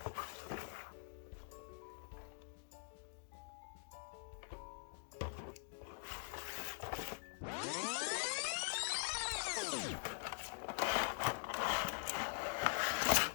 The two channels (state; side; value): silent; right; digital silence